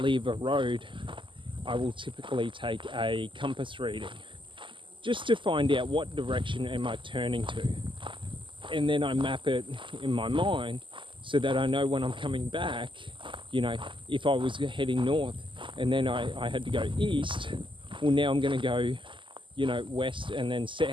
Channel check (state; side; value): late; left; 0.24 ms